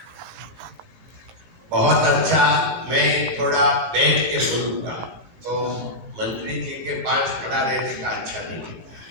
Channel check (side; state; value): left; late; 17 ms